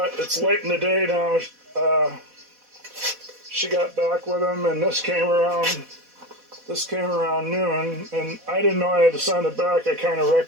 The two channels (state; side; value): late; left; 4.1 ms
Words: it's late in the day now. She got back with them, and this came around noon, and I didn't know I had to send it back. I kind of